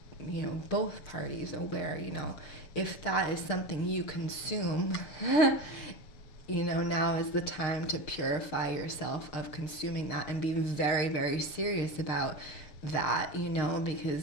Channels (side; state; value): right; late; 6.5 ms